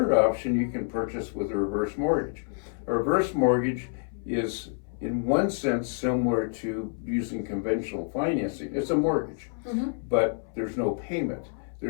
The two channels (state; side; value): silent; right; 59 dB below the other